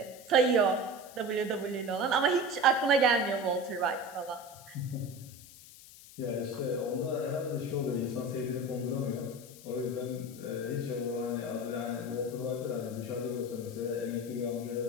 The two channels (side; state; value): left; noise; hiss, 19 dB below the sound